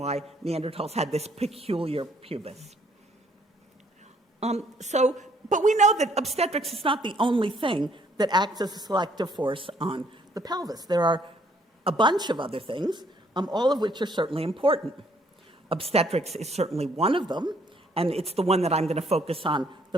Neanderthals had this peculiar pubis. But we know that obstetrics is not the only thing that acts as a selective force on the pelvis. There are a bunch of other things, all of which are certainly important. Obstetrics is certainly one of them, and it's the one that I'm going to focus on the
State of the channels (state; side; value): normal; both; correlation 0.66